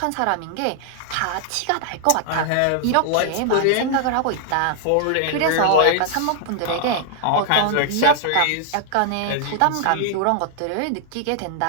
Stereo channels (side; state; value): both; different; correlation 0.00